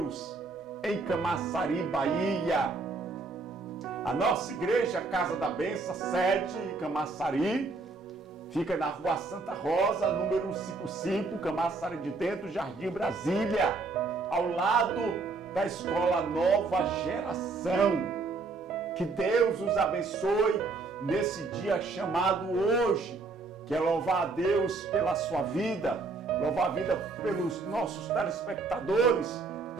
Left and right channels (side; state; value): left; quieter; 3.9 dB